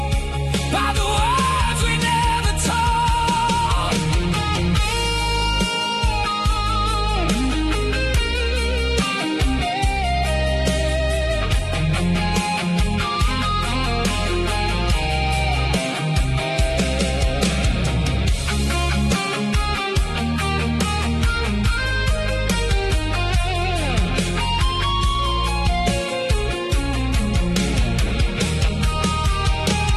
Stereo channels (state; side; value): identical; both; correlation 1.00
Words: by the words we never told.